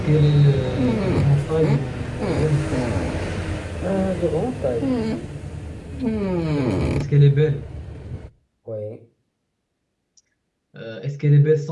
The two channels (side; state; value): both; identical; correlation 1.00